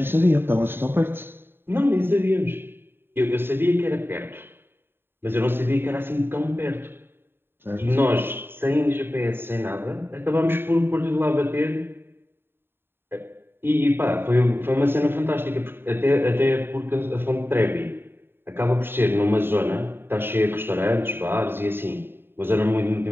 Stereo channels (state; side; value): late; left; 0.11 ms